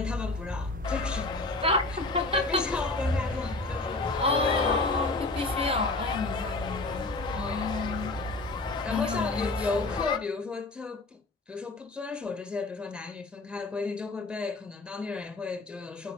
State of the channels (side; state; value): right; quieter; 3.1 dB